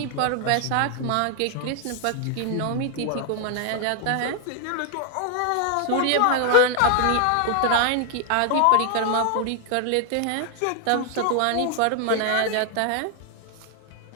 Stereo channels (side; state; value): both; different; correlation 0.00